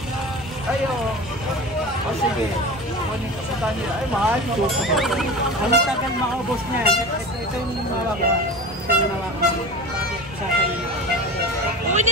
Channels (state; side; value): normal; both; correlation 0.32